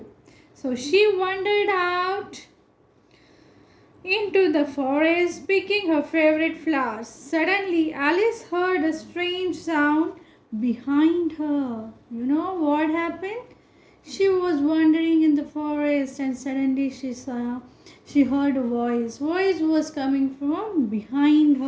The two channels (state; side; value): identical; both; correlation 1.00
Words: So she wandered out into the forest picking her favorite flowers. Suddenly, Alice heard a strange sound behind her. You know what happened? She was wandering in the forest and suddenly she heard a voice. Voice was coming from behind